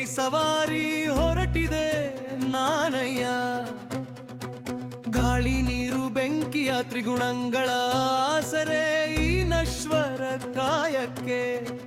ಸವಾರಿ ಹೊರಟಿದೆ ನಾನಯ್ಯ. ಗಾಳಿ ನೀರು ಬೆಂಕಿಯ ತ್ರಿಗುಣಗಳ ಆಸರೆ ಈ ನಶ್ವರ ಕಾಯಕ್ಕೆ.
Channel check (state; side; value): identical; both; correlation 1.00